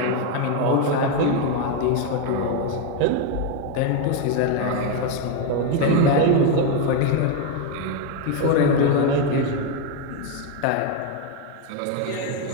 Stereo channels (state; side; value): different; both; correlation 0.02